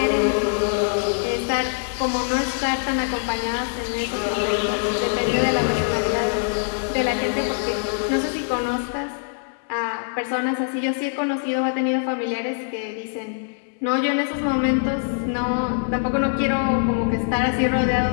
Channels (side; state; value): right; silent; digital silence